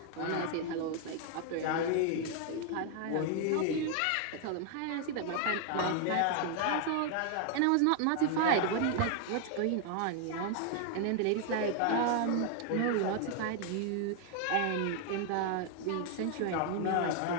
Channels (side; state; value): both; different; correlation 0.00